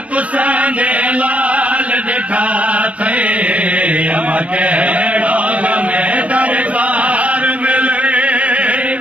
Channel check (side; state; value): left; late; 0.065 ms